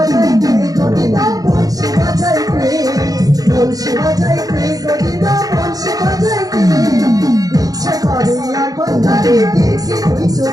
কে গো দিদা বংশী বাজাই কে বংশী বাজাই কে গো দিদা বংশী বাজাই কে ইচ্ছে করে একবার তারি দেখি দুই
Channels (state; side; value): late; left; 0.18 ms